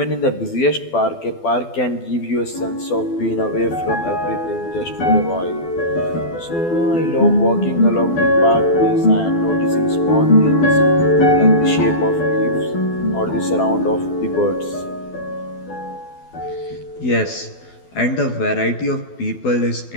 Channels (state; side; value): late; right; 12 ms